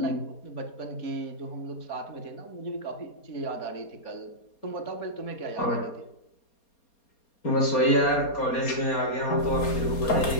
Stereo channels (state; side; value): late; right; 4.2 ms